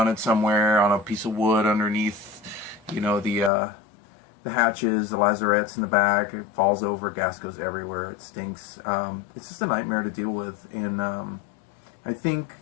somewhere on a piece of wood underneath, you know, the hatches, the lazarettes in the back, it falls over, gas goes everywhere, it stinks. It's just a nightmare to deal with, and I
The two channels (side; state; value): right; drops out; at 3.5 s